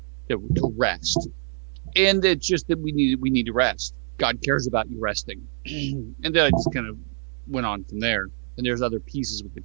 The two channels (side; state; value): left; silent; 57 dB below the other